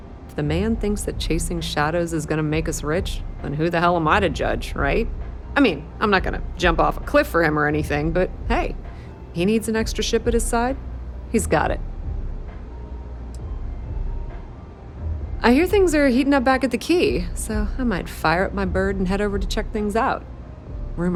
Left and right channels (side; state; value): both; identical; correlation 1.00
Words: If the man thinks that chasing shadows is gonna make us rich, then who the hell am I to judge, right? I mean, I'm not gonna jump off a cliff for him or anything, but hey, he needs an extra ship at his side, he's got it. I hear things are heating up back at the Key, so I might fire up my bird and head over to check things out.